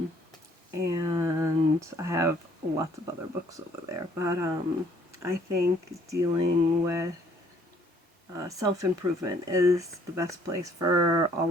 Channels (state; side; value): normal; both; correlation 0.62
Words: and I have lots of other books over there. But I think dealing with self improvement is the best place for